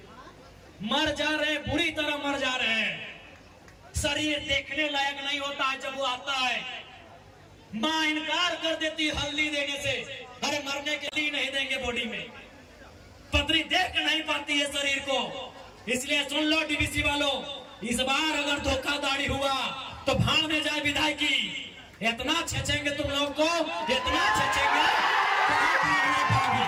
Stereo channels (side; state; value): both; identical; correlation 1.00